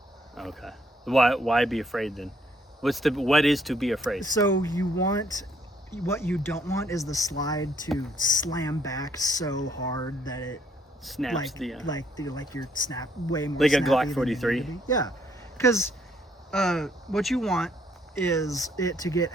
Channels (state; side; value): normal; both; correlation 0.67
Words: Okay. Why be afraid then? What is to be afraid? So what you don't want is the slide to slam back so hard that it snaps like your snap way more like a snappy Glock than 43. Yeah, because what you want is it to get